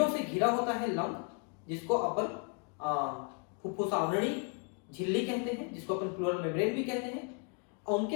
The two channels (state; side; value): quieter; right; 38.7 dB